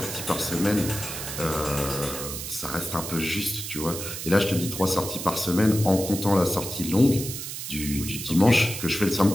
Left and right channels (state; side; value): noise; right; hiss, 7 dB below the sound